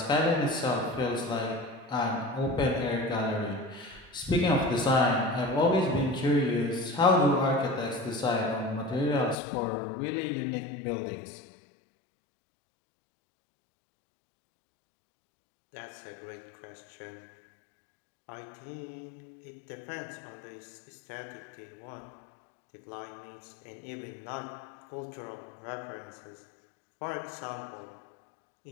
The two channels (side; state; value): right; drops out; at 9.3 s